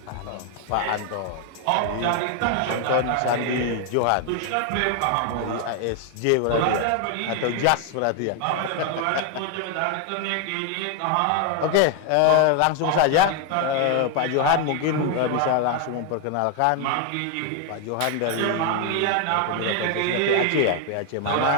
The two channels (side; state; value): both; different; correlation 0.01